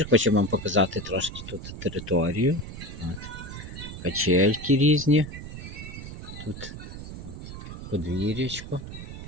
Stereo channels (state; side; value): noise; right; rumble, 10 dB below the sound